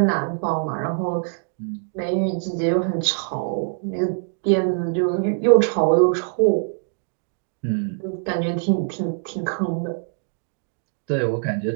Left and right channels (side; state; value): left; silent; digital silence